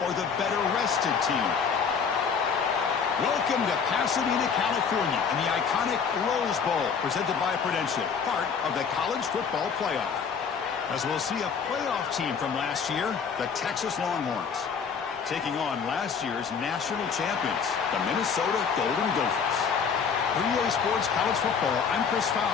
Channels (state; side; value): quieter; right; 6.3 dB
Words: or the better-rested team? Welcome to Pasadena, California, in the iconic Rose Bowl, presented by Prudential, part of the college football playoff. As we'll see a playoff team from last year, the Texas Longhorns, taking on last year's national champions, the Minnesota Golden Gophers. 3A Sports College Football, I'm Chris